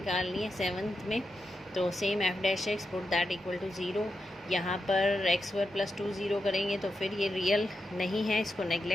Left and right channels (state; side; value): normal; both; correlation 0.87